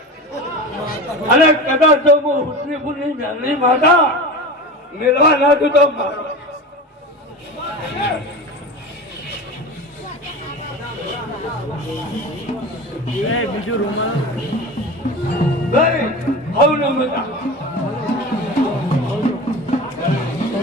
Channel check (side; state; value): both; normal; correlation 0.30